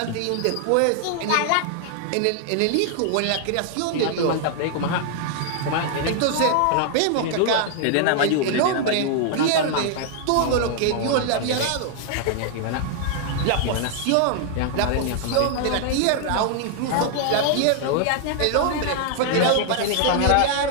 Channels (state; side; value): different; both; correlation 0.00